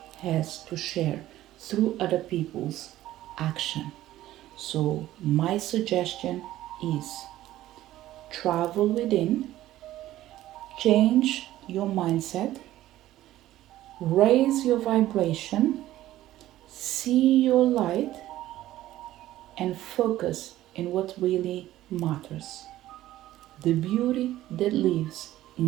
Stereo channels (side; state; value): left; quieter; 14.5 dB